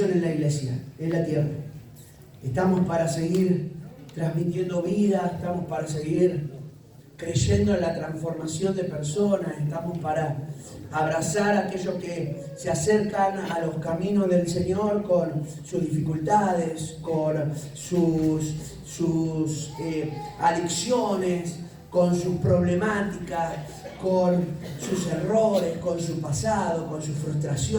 en la iglesia, en la tierra. Estamos para seguir transmitiendo vida, estamos para seguir creyendo en la transformación de personas, estamos para abrazar a aquellos que se acercan a los caminos del Señor con sus dificultades, con sus adicciones, con sus problemáticas, con sus errores, con su pasado, con sus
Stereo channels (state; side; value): identical; both; correlation 1.00